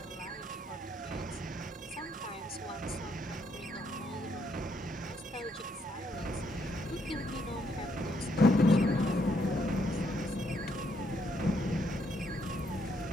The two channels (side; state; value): both; normal; correlation 0.73